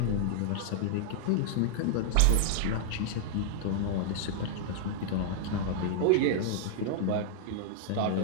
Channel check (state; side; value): different; both; correlation -0.01